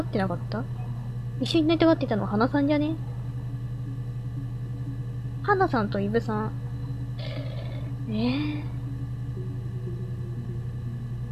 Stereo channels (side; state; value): both; identical; correlation 1.00